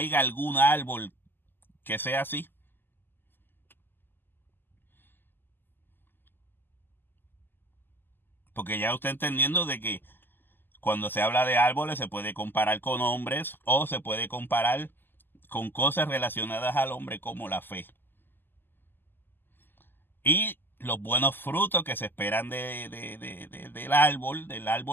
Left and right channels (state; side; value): late; right; 0.094 ms